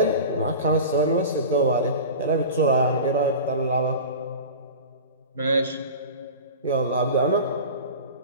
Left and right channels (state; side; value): inverted; both; correlation -0.34